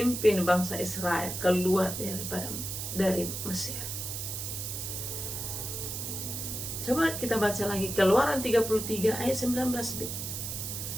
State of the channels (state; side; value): noise; right; hiss, 5 dB below the sound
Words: bangsa Israel keluar dari Mesir. Coba kita baca lagi Keluaran 33 ayat 19b.